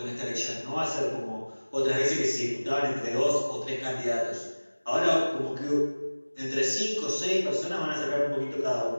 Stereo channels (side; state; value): both; inverted; correlation -1.00